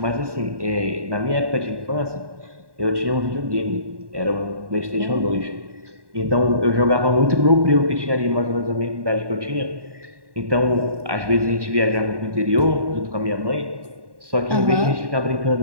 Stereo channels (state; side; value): late; left; 1.1 ms